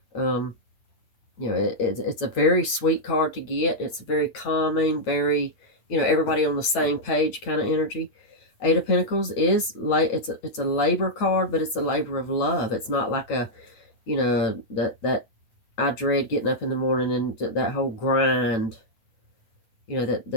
It's a very sweet card to get. It's very calming, very, everybody on the same page kind of energy. Eight of Pentacles is it's a labor card, but it's a labor of love. It's not like a, that I dread getting up in the morning and that whole grind,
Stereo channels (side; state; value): right; late; 8.9 ms